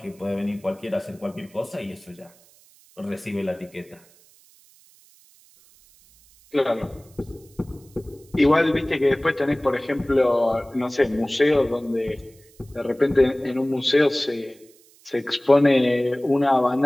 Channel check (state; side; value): noise; right; hiss, 28 dB below the sound